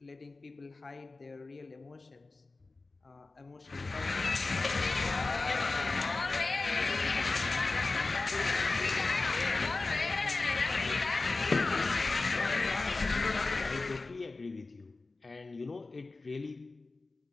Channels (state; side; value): quieter; right; 3.5 dB